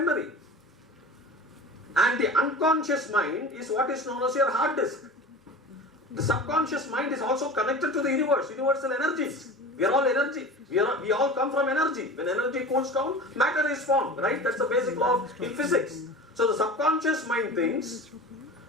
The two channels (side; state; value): both; normal; correlation 0.34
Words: And the unconscious mind is what is known as your hard disk. The subconscious mind is also connected to the universe, universal energies. We are all energy. We all come from energy. When energy cools down, matter is formed, right? That's the basic law in physics. So the subconscious mind thinks